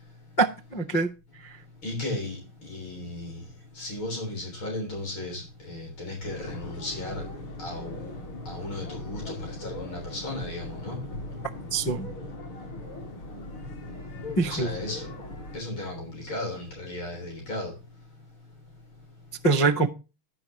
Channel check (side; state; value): right; late; 6.1 ms